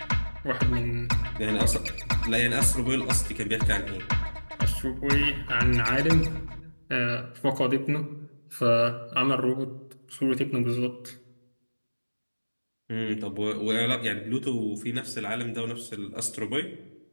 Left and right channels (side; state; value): both; inverted; correlation -1.00